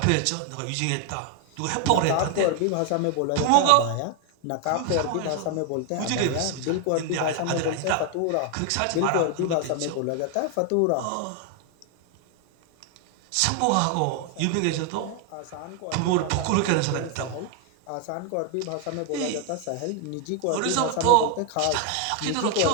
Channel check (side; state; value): both; different; correlation 0.00